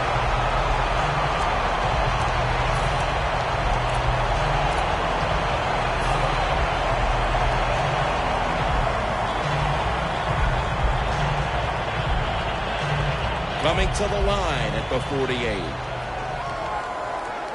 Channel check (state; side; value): identical; both; correlation 1.00